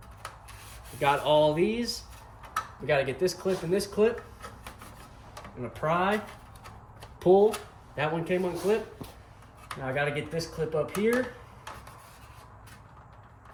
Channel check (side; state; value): both; identical; correlation 1.00